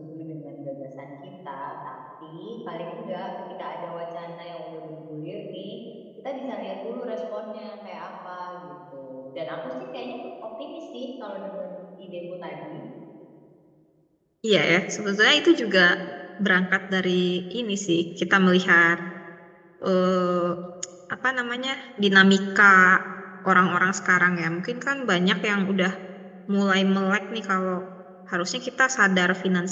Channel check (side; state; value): both; identical; correlation 1.00